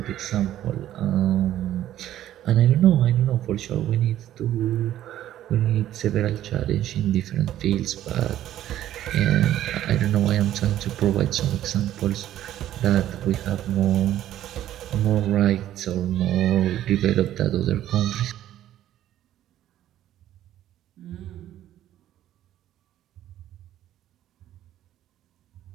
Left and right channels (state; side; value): quieter; left; 12.5 dB